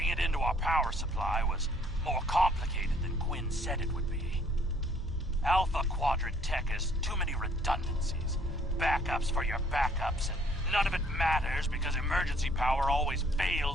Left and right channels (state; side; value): normal; both; correlation 0.61